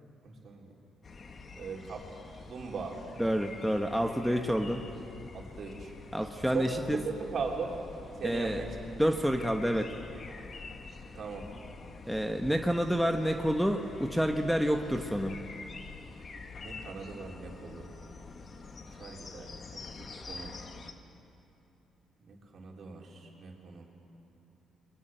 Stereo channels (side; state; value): both; normal; correlation 0.93